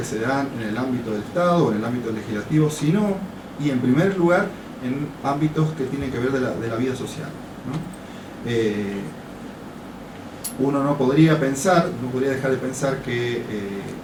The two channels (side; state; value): both; identical; correlation 1.00